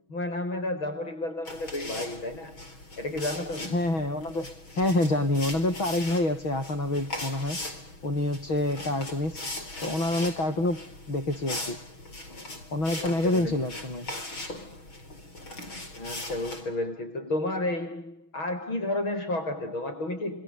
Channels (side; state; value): right; late; 6.2 ms